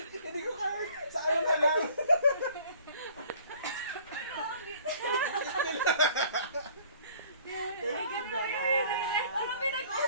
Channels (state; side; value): inverted; both; correlation -0.53